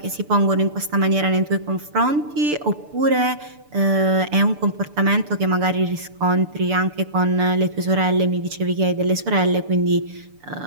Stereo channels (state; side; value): late; left; 6.8 ms